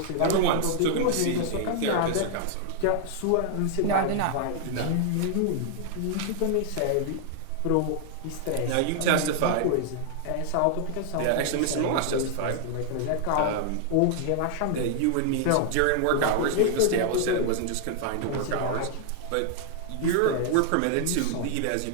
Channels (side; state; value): both; different; correlation -0.01